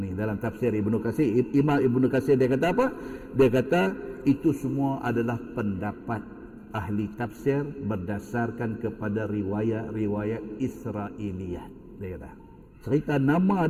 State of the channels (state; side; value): identical; both; correlation 1.00